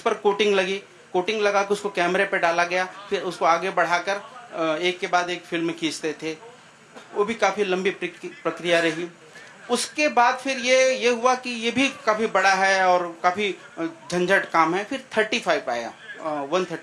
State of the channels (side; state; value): both; identical; correlation 1.00